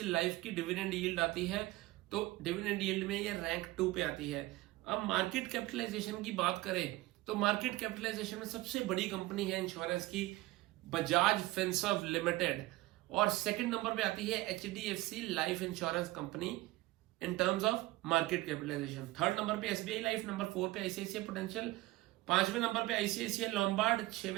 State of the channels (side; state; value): left; quieter; 19.0 dB